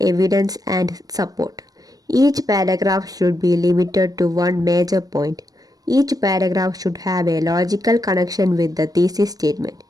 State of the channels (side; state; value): left; late; 0.18 ms